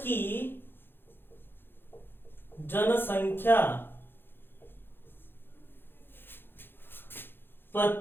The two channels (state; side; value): late; right; 0.10 ms